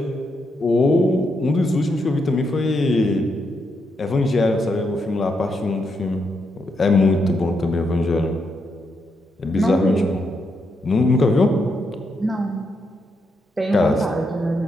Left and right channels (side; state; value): both; normal; correlation 0.80